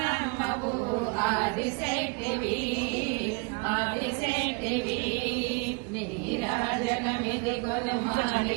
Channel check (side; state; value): left; quieter; 31.4 dB